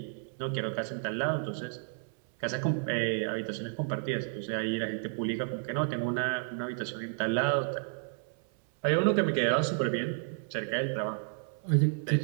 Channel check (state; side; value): silent; left; 57 dB below the other